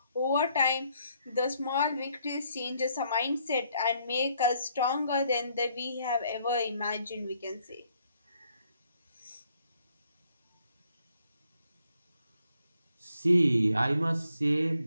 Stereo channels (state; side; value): inverted; both; correlation -0.70